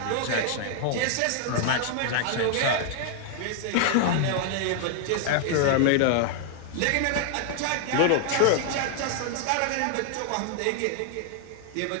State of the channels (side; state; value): both; different; correlation 0.00